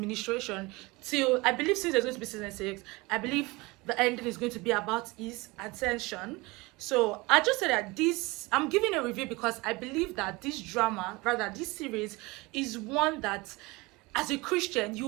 till, I believe, since there's going to be season 6, I believe the ending is going to be about his ascension. So I just said that I'm giving a review because I believe that this drama, rather this series, is one that as a Christian you'll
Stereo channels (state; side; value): quieter; left; 23.6 dB